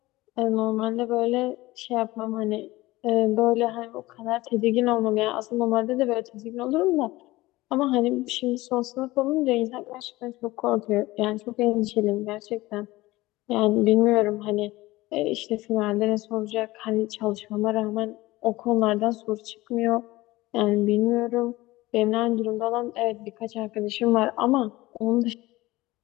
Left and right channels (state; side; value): quieter; right; 19.2 dB